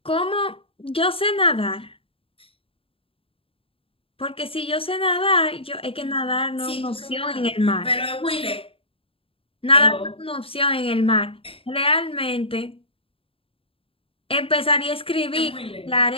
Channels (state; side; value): late; right; 0.27 ms